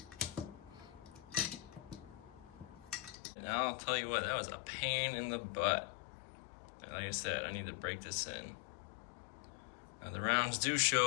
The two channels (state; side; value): drops out; right; at 3.2 s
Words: And I'll tell you what, that was a pain in the butt. Like I said, I need to break this in. Now the rounds do